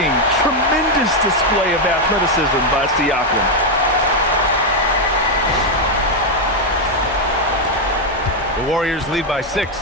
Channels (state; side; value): normal; both; correlation 0.02